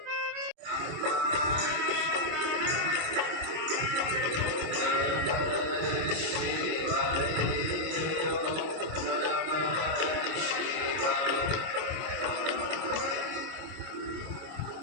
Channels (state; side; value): late; left; 26 ms